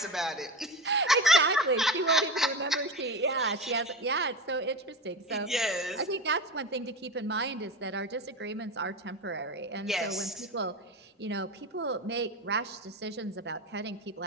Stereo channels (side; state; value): both; normal; correlation 0.25